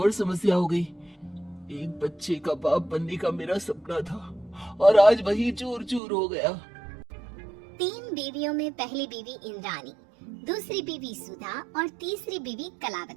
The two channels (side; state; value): left; drops out; at 6.0 s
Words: समस्या हो गई। एक बच्चे का बाप बनने का मेरा सपना था और आज वही चूर चूर हो गया। 3 बीवियों में पहली बीवी इंद्राणी, दूसरी बीवी सुधा और तीसरी बीवी